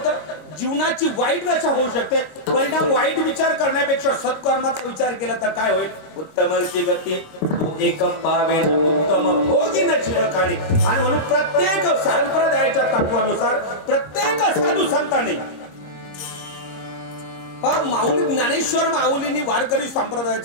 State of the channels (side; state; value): right; late; 26 ms